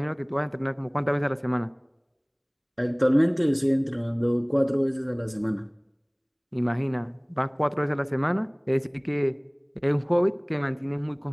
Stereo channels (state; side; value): identical; both; correlation 1.00